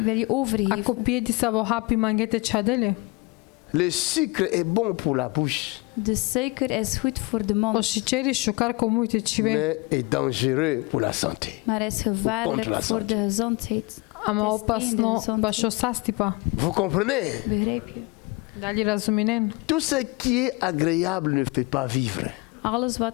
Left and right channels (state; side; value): quieter; right; 25.6 dB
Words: wil je overgeven. Ako pije di sa vo hapi mangete čadele. Le sucre est bon pour la bouche, De suiker is goed voor de O mond, și ceri šukar ko mujte čive. mais est dangereux pour la santé. maar is Contre la gevaarlijk voor santé. de gezondheid. Ama Het is opasno tegen de baš o sastipa. Vous comprenez? Begrijp je? Da li razuminen? Tout ce qui est agréable ne fait pas vivre. Alles